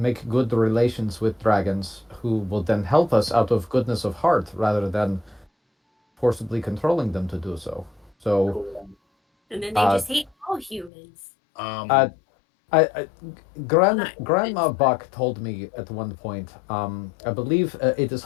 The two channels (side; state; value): right; drops out; at 10.9 s